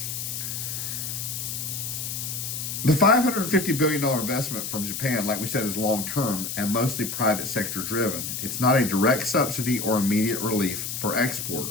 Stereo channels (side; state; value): left; noise; hiss, 5 dB below the sound